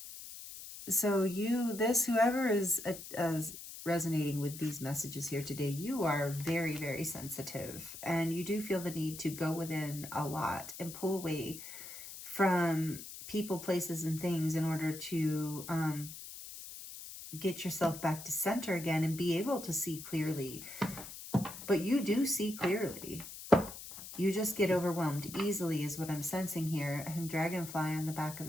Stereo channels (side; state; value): left; noise; hiss, 12 dB below the sound